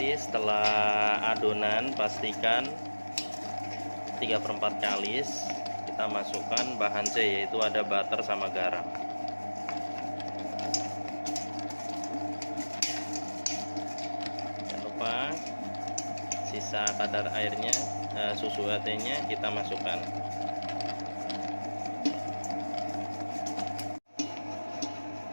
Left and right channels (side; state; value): both; inverted; correlation -1.00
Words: setelah adonan pastikan 3/4 kalis kita masukkan bahan C, yaitu ada butter sama garam. Jangan lupa sisa kadar airnya, susu UHT-nya kita masukkan.